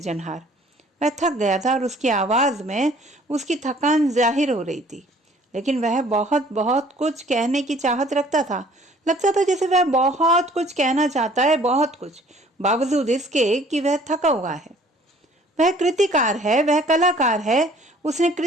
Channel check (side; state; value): both; normal; correlation 0.55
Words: वह थक गया था और उसकी आवाज में उसकी थकान जाहिर हो रही थी, लेकिन वह बहुत बहुत कुछ कहने की चाहत रखता था। लगता था जैसे वह बहुत कुछ कहना चाहता है, बहुत कुछ, बावजूद इसके कि वह थका हुआ है। वह कृतिकार है, वह कलाकार है। उसने